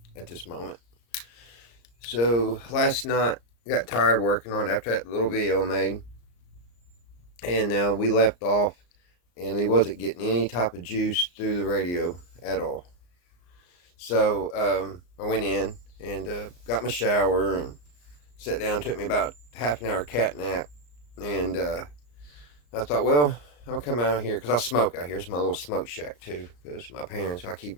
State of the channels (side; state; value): right; late; 34 ms